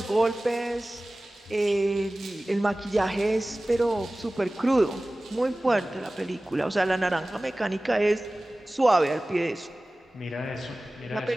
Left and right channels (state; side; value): normal; both; correlation 0.98